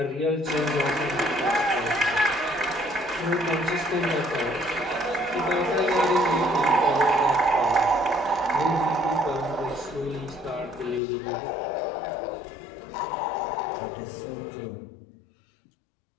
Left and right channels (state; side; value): drops out; right; at 11.0 s